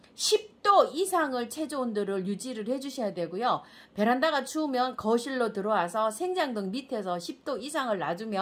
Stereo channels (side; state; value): both; identical; correlation 1.00